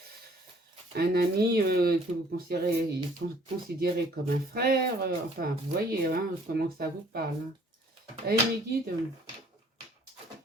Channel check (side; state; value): both; normal; correlation 0.58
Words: un ami que vous considérez comme un frère. Enfin, vous voyez hein, comment ça vous parle. Hein. Allez, mes guides,